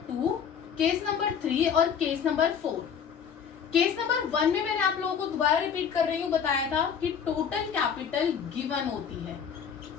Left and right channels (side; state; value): right; quieter; 7.4 dB